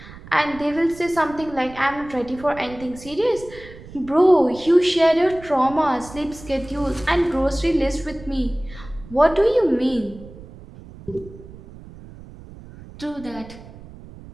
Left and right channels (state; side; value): noise; right; rumble, 18 dB below the sound